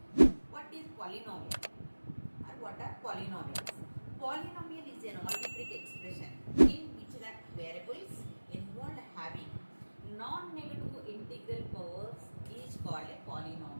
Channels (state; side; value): inverted; both; correlation -1.00